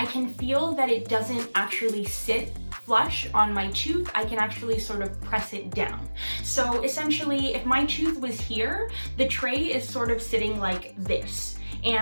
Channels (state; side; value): inverted; both; correlation -1.00